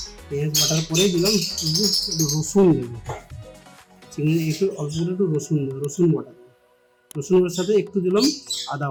পেঁয়াজ বাটার পরে দিলাম একটু রসুন দেবো। চিংড়ি একটু অল্প করে একটু রসুন বাটা দেবো। রসুনের সাথে একটু দিলাম আদা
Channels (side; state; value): both; identical; correlation 1.00